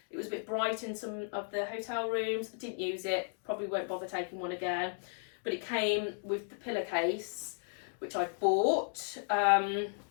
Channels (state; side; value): silent; right; 55 dB below the other